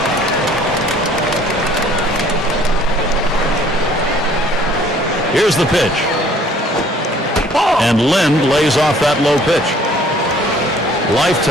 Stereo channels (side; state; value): both; normal; correlation 0.57